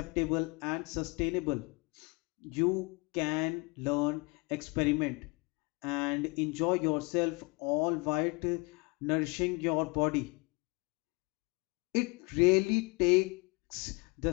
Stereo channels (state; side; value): quieter; right; 28.3 dB